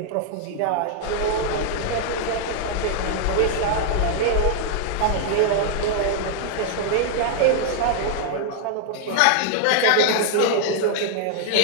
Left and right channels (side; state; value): both; different; correlation -0.01